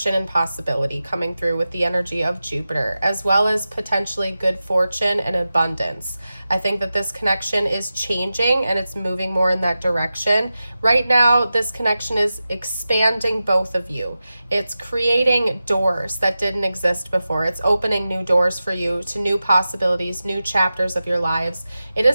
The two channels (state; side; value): inverted; both; correlation -0.93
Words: and possibility coming through with the energy of Jupiter, as well as potentially good fortune and abundance. I think that this connection is changing and it's moving more in that direction. Right now, this connection is expanding both of you. It's creating doors that didn't exist before. It's opening new doors for you to new possibilities, new chapters of your lives. It